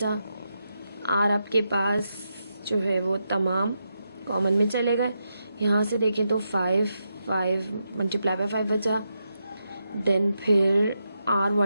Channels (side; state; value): both; inverted; correlation -0.85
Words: आर आपके पास जो है वो तमाम कॉमन में चले गए। यहाँ से देखें तो 5 मल्टीप्लाई बाय 5 बचा, देन फिर आर